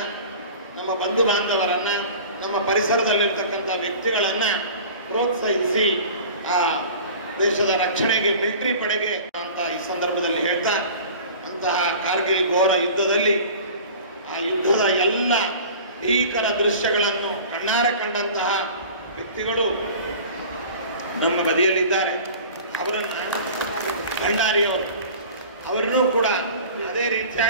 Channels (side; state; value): both; inverted; correlation -0.40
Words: ನಮ್ಮ ಬಂಧು ಬಾಂಧವರನ್ನು, ನಮ್ಮ ಪರಿಸರದಲ್ಲಿರ್ತಕ್ಕಂಥ ವ್ಯಕ್ತಿಗಳನ್ನು ಪ್ರೋತ್ಸಾಹಿಸಿ ಆ ದೇಶದ ರಕ್ಷಣೆಗೆ ಮಿಲಿಟರಿ ಪಡೆಗೆ ಅಂತ ಈ ಸಂದರ್ಭದಲ್ಲಿ ಹೇಳ್ತಾ, ಅಂತಹ ಕಾರ್ಗಿಲ್ ಘೋರ ಯುದ್ಧದಲ್ಲಿ ಆ ಯುದ್ಧದ ಎಲ್ಲ ಭೀಕರ ದೃಶ್ಯಗಳನ್ನು ಕಣ್ಣಾರೆ ಕಂಡಂತಹ ವ್ಯಕ್ತಿಗಳು ನಮ್ಮ ಬದಿಯಲ್ಲಿದ್ದಾರೆ. ಅವರನ್ನು ಭಂಡಾರಿಯವರು ಅವರನ್ನೂ ಕೂಡ ಅದೇ